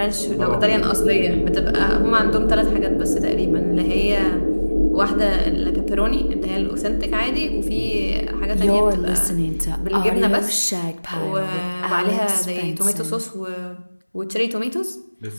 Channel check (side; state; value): both; inverted; correlation -1.00